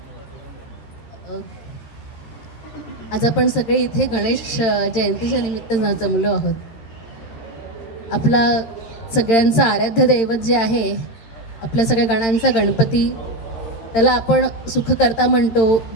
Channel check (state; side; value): late; right; 13 ms